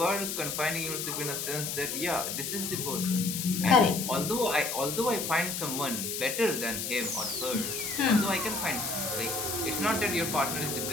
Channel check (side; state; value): left; noise; hiss, 3 dB below the sound